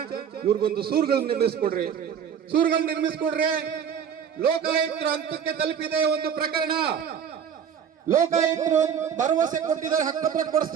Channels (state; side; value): quieter; left; 7.9 dB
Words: ಇವ್ರಿಗೊಂದು ಸೂರುಗಳನ್ನ ನಿರ್ಮಿಸ್ಕೊಡ್ರಿ. ಲೋಕಾಯುಕ್ತರ ಹಂತಕ್ಕೆ ತಲುಪಿದೆ ಒಂದು ಪ್ರಕರಣ. ಲೋಕಾಯುಕ್ತರು ಭರವಸೆ ಕೊಟ್ಟಿದ್ದಾರೆ ಹಕ್ಕುಪತ್ರ